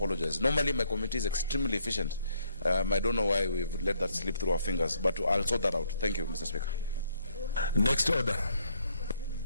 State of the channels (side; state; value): both; inverted; correlation -0.69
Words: Normally my committee is extremely efficient. I don't know why we've let that slip through our fingers, but I'll sort that out. Thank you, Mr. Speaker. Next order.